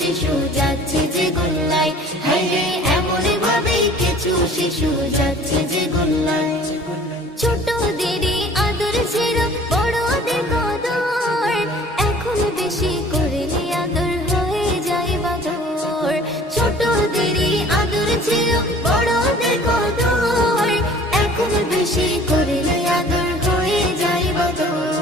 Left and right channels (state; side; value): normal; both; correlation 0.49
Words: যাচ্ছে যে গোল্লায়, হায়রে এমনই ভাবে কিছু শিশু যাচ্ছে যে গোল্লায়। ছোটদেরই আদর ছিল বড়দের কদর, এখন বেশি করলে আদর হয়ে যায় বাদর। ছোটদেরই আদর ছিল বড়দের কদর, এখন বেশি করলে আদর হয়ে যায়